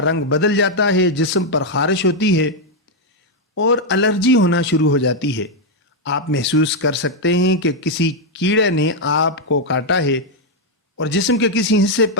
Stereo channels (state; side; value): normal; both; correlation 0.00